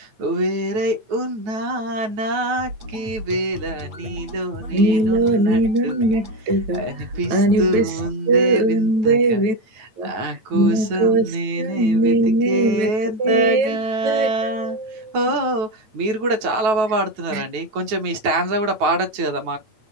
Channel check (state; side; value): late; left; 9.2 ms